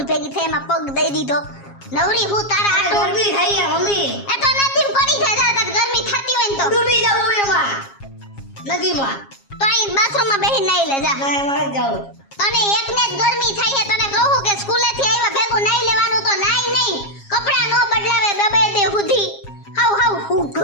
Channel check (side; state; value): right; late; 7.3 ms